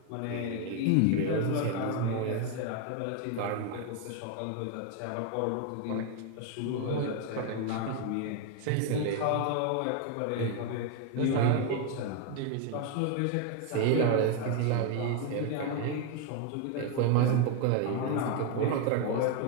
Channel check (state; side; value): different; both; correlation 0.01